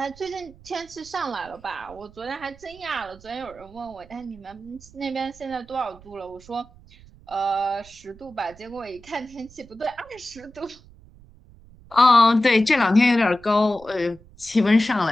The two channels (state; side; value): noise; right; rumble, 23 dB below the sound